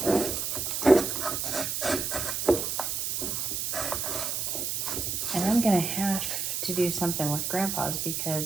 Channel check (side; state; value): right; noise; hiss, 1 dB below the sound